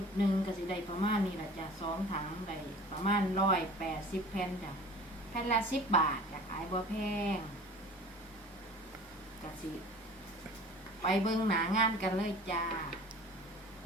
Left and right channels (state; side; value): normal; both; correlation 0.42